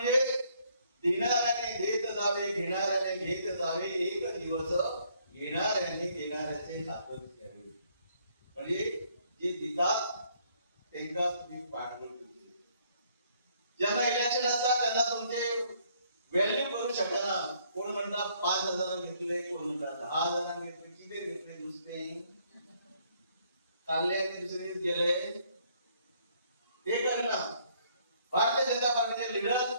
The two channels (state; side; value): inverted; both; correlation -0.66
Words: देणाऱ्याने देत जावे, घेणाऱ्याने घेत जावे. एक दिवस घेणाऱ्याने देणाऱ्याचे हातच घ्यावे. म्हणजे जे देतात त्यांना तुम्ही पाठबळ करते. ज्यांना इलेक्शन असतात त्यांना तुमचे व्हॅल्यू करू शकना. कोण म्हणतात 5,000 घेतले, कोण म्हणतात 10,000 घेतले, किती घेतले नुसते काढले आणि दुसरे गेले ते करणार. भारतीय जनता पार्टीचे लीडर